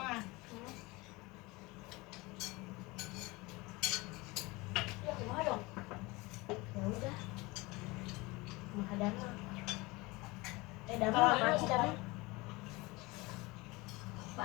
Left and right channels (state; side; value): quieter; right; 23.3 dB